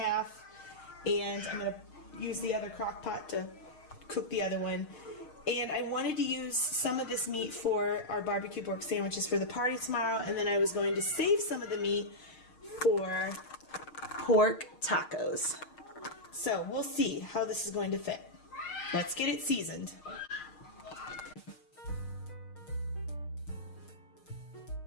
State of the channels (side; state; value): right; late; 6.5 ms